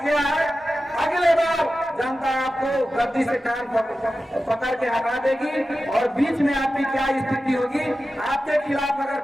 है। अगले बार जनता आपको गद्दी से कान पकड़ के हटा देगी और बीच में आपकी क्या स्थिति होगी। आपके खिलाफ अगर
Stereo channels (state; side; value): normal; both; correlation 0.93